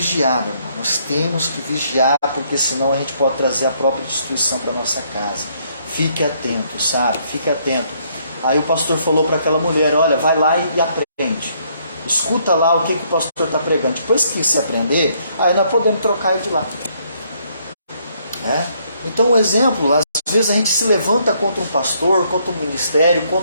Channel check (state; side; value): inverted; both; correlation -0.69